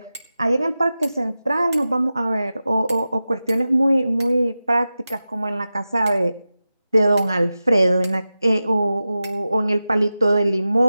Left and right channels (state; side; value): inverted; both; correlation -0.94